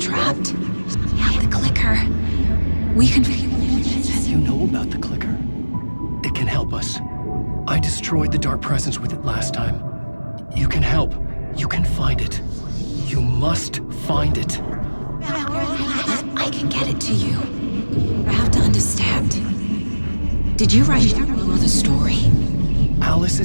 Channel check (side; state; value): both; inverted; correlation -1.00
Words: I have the clicker. We can... You know about the clicker? It can help us. I destroyed the dark presence with it last time. You can help. You can find it. You must find it. I can get it to you. I have to understand. Did you write down the story? Alice